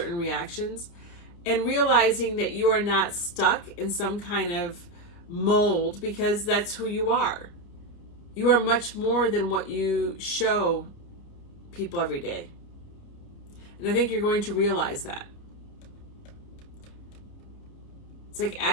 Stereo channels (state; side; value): late; right; 29 ms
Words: reactions, and realizing that you are not stuck in some kind of mold, because that's who you are. You are much more than what you show people every day. And I think you're going to realize that. It's like